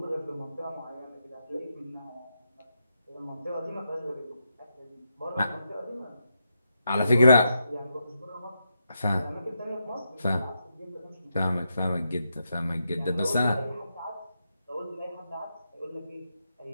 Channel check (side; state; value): both; inverted; correlation -0.84